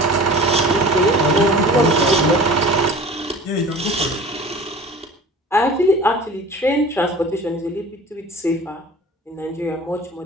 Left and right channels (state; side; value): normal; both; correlation 0.41